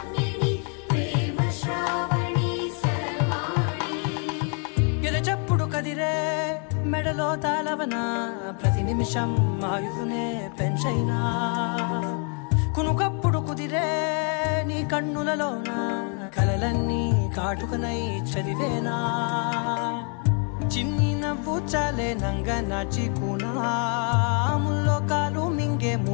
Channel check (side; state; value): right; quieter; 39.8 dB